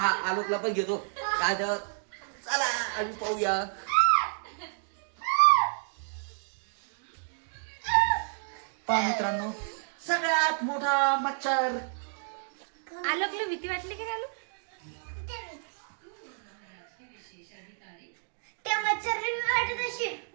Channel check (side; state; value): left; silent; digital silence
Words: आलोकला पण घेतो काय तर. चला आम्ही पाहूया. पहा मित्रांनो सगळ्यात मोठा मच्छर. आलोकला भीती वाटली की आलोक त्या मच्छरने मी वाटत अशी